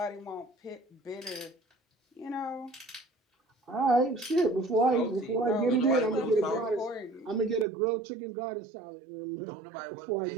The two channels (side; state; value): left; drops out; at 7.7 s